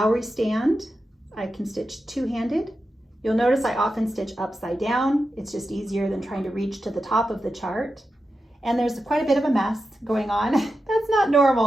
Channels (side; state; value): both; normal; correlation 0.90